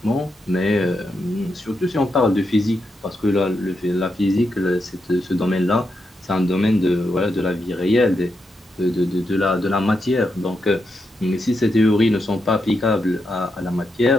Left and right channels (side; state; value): both; normal; correlation 0.84